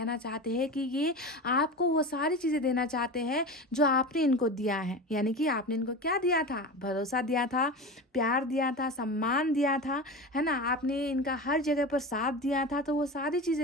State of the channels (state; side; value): normal; both; correlation 0.28